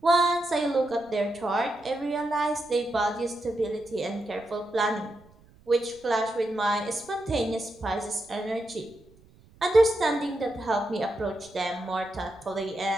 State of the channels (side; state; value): right; noise; rumble, 27 dB below the sound